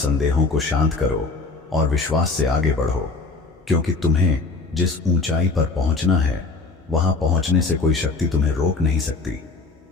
को शांत करो और विश्वास से आगे बढ़ो, क्योंकि तुम्हें जिस ऊंचाई पर पहुंचना है वहां पहुंचने से कोई शक्ति तुम्हें रोक नहीं सकती।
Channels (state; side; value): quieter; right; 3.9 dB